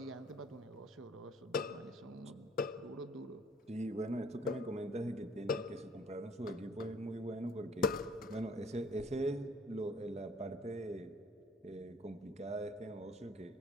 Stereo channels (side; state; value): both; normal; correlation 0.56